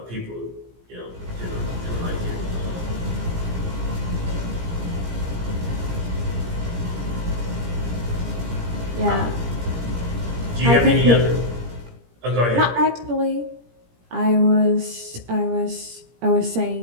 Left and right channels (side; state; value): left; late; 17 ms